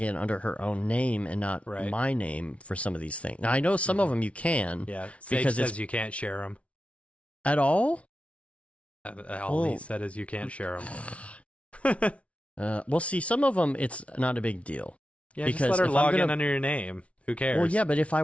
in under her own name and not my name for some of these things. Now, I know some of them you can. Yeah, Sage says you can't share them. At all? All he said is you can't share them. Well, see, some of them, it's not a big deal. Yeah, because just let her log in under your name. Who cares? Well, yeah, but if I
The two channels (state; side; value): late; right; 0.063 ms